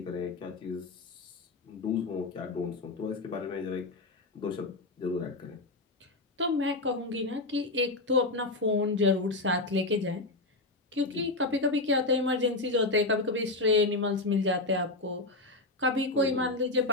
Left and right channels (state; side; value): quieter; right; 3.0 dB